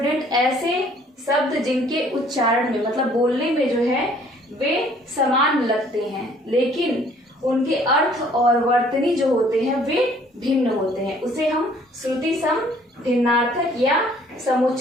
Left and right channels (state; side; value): normal; both; correlation 0.58